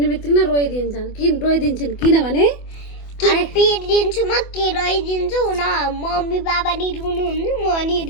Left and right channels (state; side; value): late; right; 24 ms